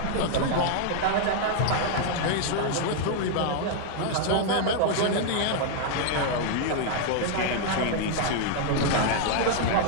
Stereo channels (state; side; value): different; both; correlation 0.00